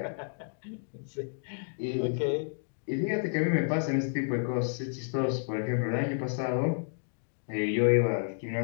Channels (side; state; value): right; silent; digital silence